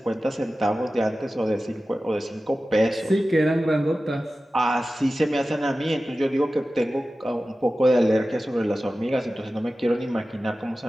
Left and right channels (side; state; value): both; normal; correlation 0.95